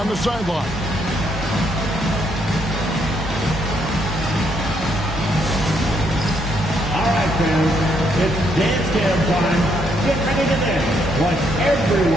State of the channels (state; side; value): normal; both; correlation 0.73